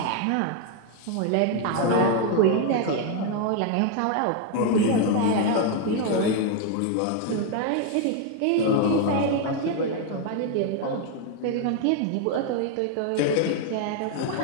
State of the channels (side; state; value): both; different; correlation 0.01